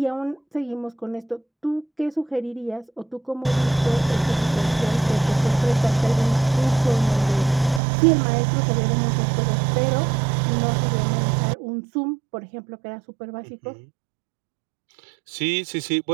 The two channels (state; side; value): drops out; left; at 7.8 s